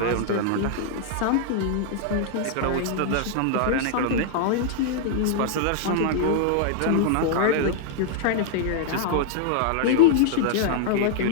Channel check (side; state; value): both; different; correlation -0.01